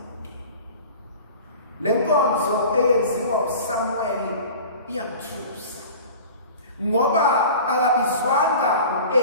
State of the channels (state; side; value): inverted; both; correlation -0.39